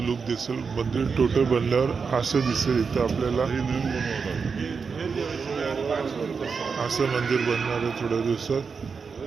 लुक दिसेल. मंदिर टोटल बनल्यावर असं दिसेल. इथं आपल्याला असं मंदिर बनणार आहे थोड्या दिवसात.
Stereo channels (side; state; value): left; quieter; 5.4 dB